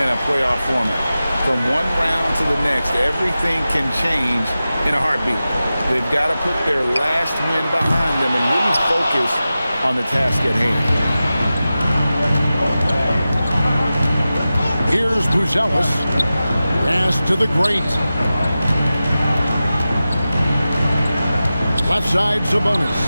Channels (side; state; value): both; inverted; correlation -0.94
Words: a playoff format. From one round to the next, everything can change in a heartbeat. They've got to put their last win behind them and really focus on the task at hand. Here's Buzelis. Pass to the great. Left side, Sabonis.